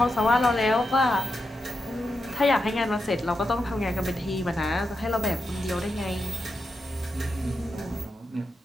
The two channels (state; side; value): normal; both; correlation 0.87